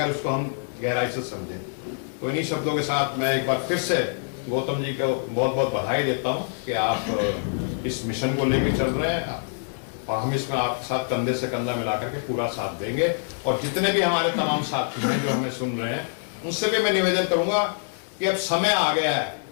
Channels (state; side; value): silent; right; digital silence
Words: उसको हम गहराई से समझें। तो इन्हीं शब्दों के साथ मैं एक बार फिर से गौतम जी को बहुत बहुत बधाई देता हूं कि आप इस मिशन को लेकर चल रहे हैं और हम इसमें आपके साथ कंधे से कंधा मिलाकर के पूरा साथ देंगे। और जितने भी हमारे तमाम साथी हैं जो हमें सुन रहे हैं, उनसे भी मैं निवेदन करूंगा कि अब समय आ गया है।